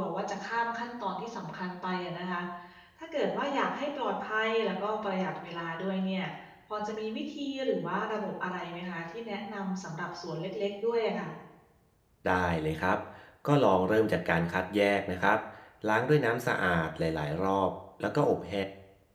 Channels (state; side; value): identical; both; correlation 1.00